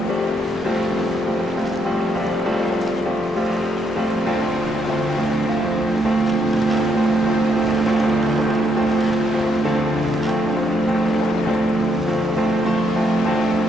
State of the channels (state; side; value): normal; both; correlation 0.75